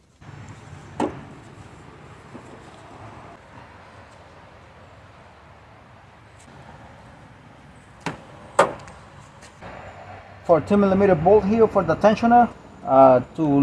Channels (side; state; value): both; identical; correlation 1.00